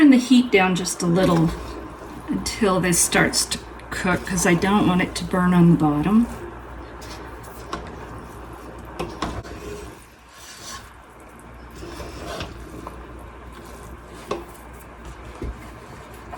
the heat down just a little until this starts to cook, because I don't want it to burn on the bottom.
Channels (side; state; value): both; identical; correlation 1.00